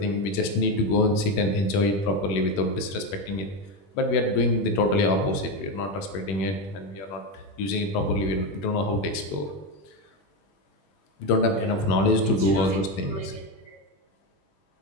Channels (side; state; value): right; late; 21 ms